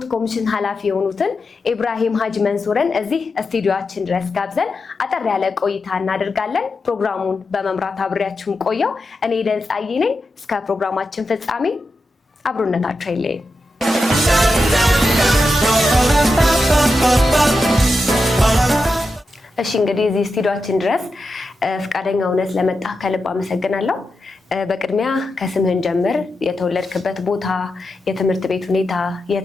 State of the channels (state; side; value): normal; both; correlation 0.89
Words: ኮሚሽን ኃላፊ የሆኑትን ኢብራሂም ሀጂ መንሱርን እዚህ ስቱዲዮአችን ድረስ ጋብዘን አጠር ያለ ቆይታ እናደርጋለን። ፕሮግራሙን በመምራት አብሬያችሁን ቆየው እኔ ደንጻይ ነኝ። እስከ ፕሮግራማችን ፍጻሜ አብሮነታችሁ አይለየን። እሺ እንግዲህ እዚህ ስቱዲዮአችን ድረስ ፍቃደኛ ሆነህ ስለመጣ ከልብ አመሰግናለሁ። በቅድሚያ ከስምህን ጀምር፣ የተወለድክበት ቦታ፣ የትምህርት ቤት ሁኔታ፣